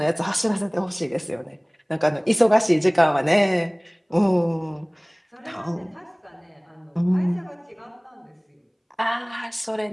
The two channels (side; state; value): both; identical; correlation 1.00